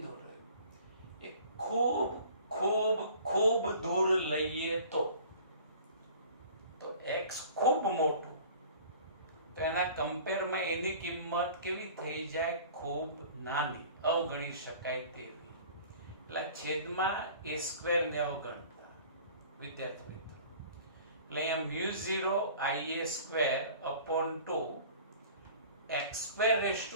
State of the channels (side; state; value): both; inverted; correlation -0.46